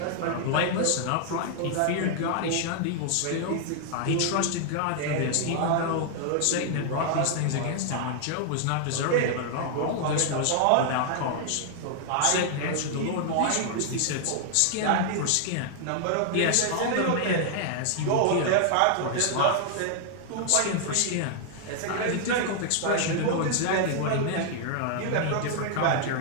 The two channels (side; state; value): both; different; correlation 0.00